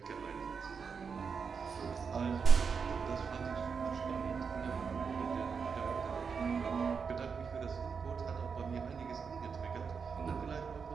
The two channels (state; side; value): quieter; left; 5.8 dB